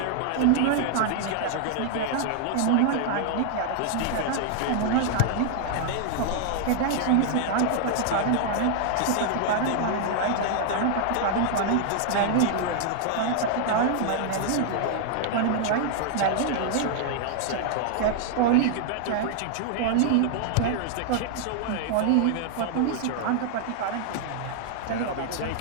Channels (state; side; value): different; both; correlation 0.00